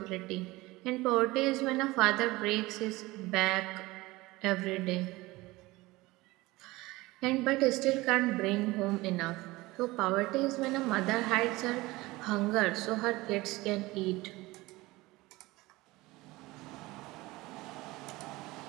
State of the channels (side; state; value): left; quieter; 20.5 dB